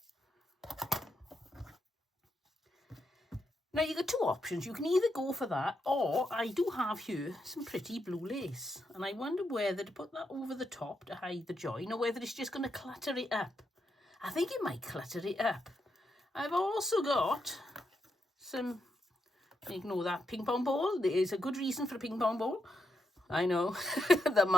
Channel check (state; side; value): normal; both; correlation 0.82